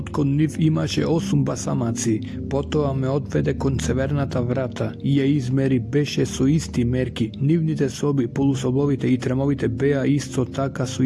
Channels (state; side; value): identical; both; correlation 1.00